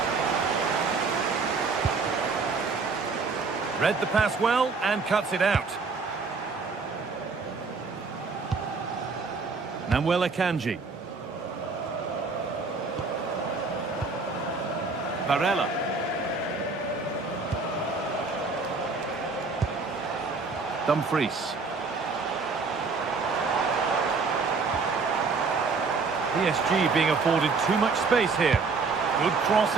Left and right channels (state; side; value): quieter; left; 4.4 dB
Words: Read the pass well and cuts it out. Namuel Akanji. Varela. Dumfries. PSG being afforded too much space here. Good cross